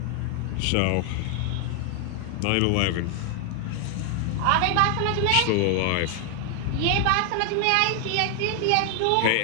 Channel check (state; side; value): different; both; correlation 0.00